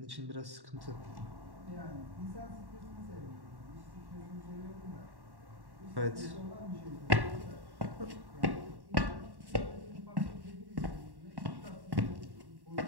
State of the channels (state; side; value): late; left; 1.1 ms